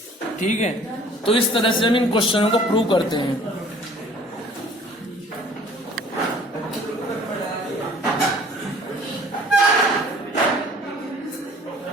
ठीक है, तो इस तरह से हम इन क्वेश्चनों को प्रूव करते हैं।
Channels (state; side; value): normal; both; correlation 0.52